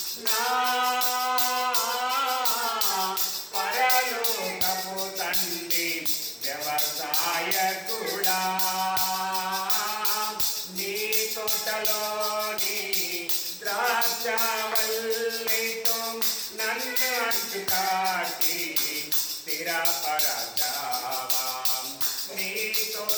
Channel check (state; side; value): identical; both; correlation 1.00